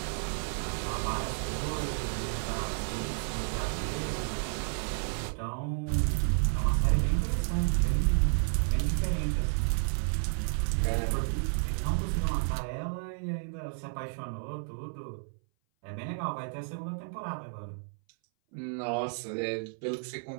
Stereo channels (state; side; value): silent; left; 57 dB below the other